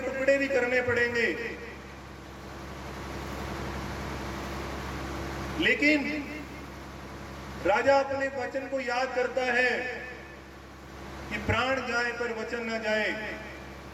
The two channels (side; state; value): both; identical; correlation 1.00